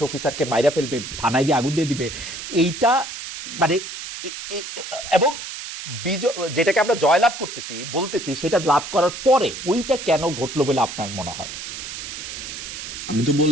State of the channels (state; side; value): noise; right; hiss, 9 dB below the sound